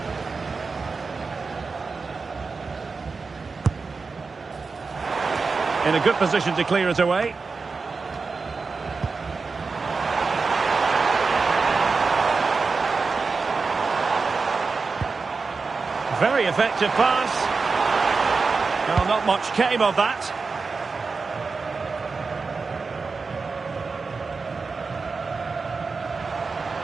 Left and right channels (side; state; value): left; quieter; 4.5 dB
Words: In a good position to clear it away. Very effective pass. Well, not much came of that.